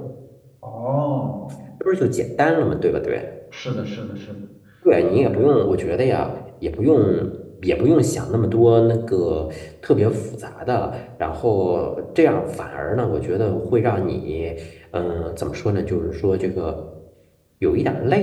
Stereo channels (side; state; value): both; identical; correlation 1.00